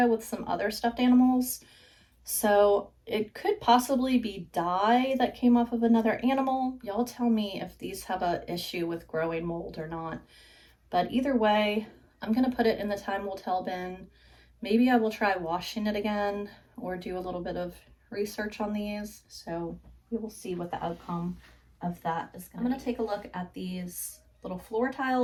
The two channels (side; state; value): both; identical; correlation 1.00